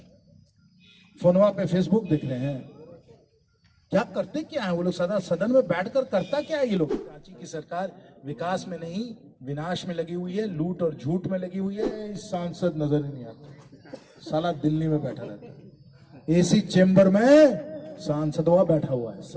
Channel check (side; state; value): both; identical; correlation 1.00